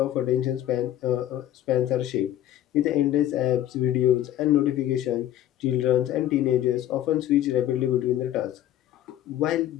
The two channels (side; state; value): right; quieter; 12.4 dB